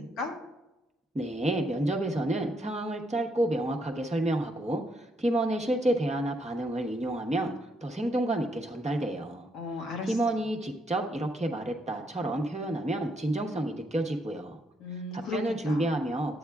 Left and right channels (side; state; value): both; normal; correlation 0.75